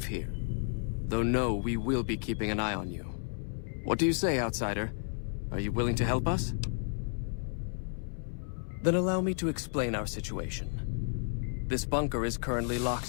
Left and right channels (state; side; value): silent; right; 56 dB below the other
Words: here. Though no, we will be keeping an eye on you. What do you say, outsider? Are you willing to help us? Then allow me to explain our situation. This bunker is currently